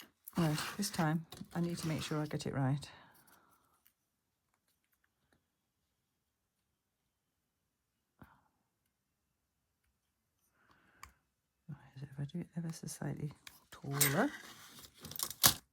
Right, this time I need to make sure I get it right. If I do it ever so slightly taller.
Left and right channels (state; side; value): identical; both; correlation 1.00